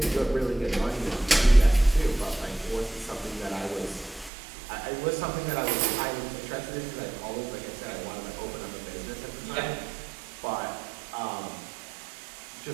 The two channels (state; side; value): drops out; left; at 4.3 s